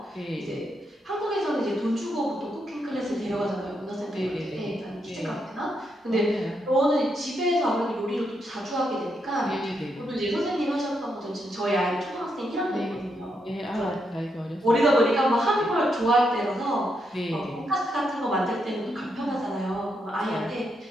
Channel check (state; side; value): normal; both; correlation 0.80